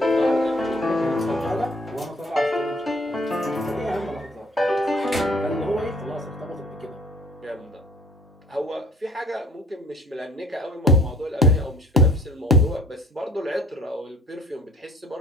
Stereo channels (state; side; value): normal; both; correlation 0.54